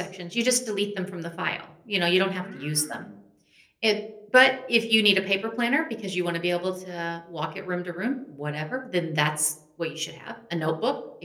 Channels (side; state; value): both; identical; correlation 1.00